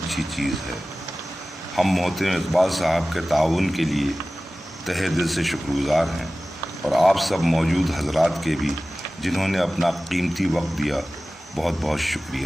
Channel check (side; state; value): both; normal; correlation 0.97